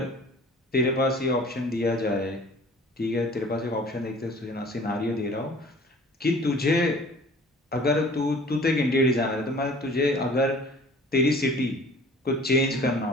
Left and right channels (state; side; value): normal; both; correlation 0.48